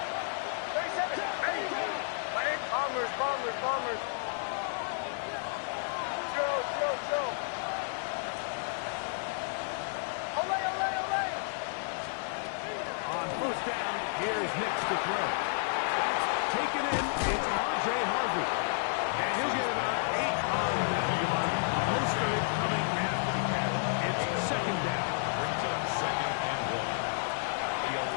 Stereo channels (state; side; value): silent; right; digital silence